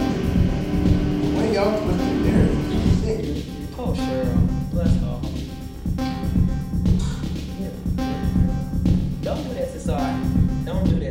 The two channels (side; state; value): both; identical; correlation 1.00